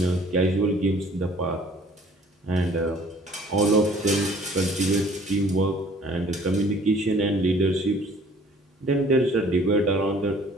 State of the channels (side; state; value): both; normal; correlation 0.54